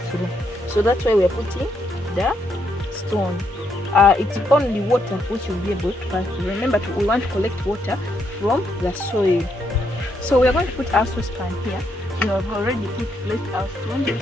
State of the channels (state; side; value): normal; both; correlation 0.76